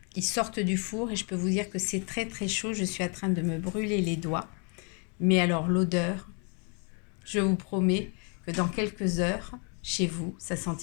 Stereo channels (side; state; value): right; quieter; 37.6 dB